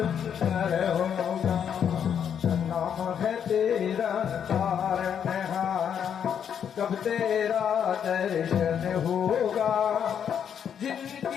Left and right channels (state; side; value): quieter; right; 8.3 dB